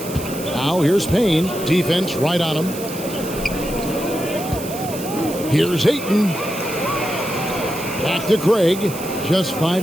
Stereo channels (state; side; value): noise; right; hiss, 12 dB below the sound